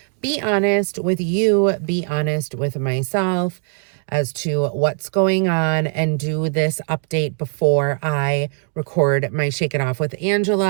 be honest with you, be honest with myself as to what's going on, and do this update before I record my Shake It Off with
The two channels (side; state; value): left; silent; 58 dB below the other